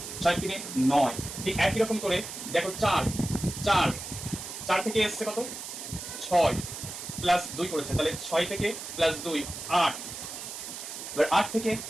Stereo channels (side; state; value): right; noise; hiss, 9 dB below the sound